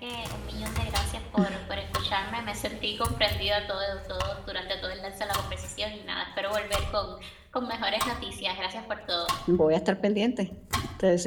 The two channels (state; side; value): identical; both; correlation 1.00